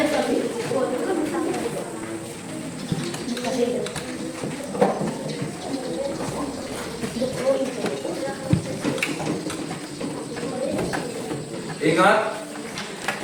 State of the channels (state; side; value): identical; both; correlation 1.00